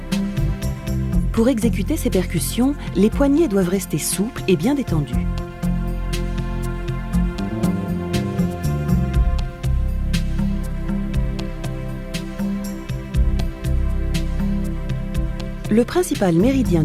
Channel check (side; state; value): both; identical; correlation 1.00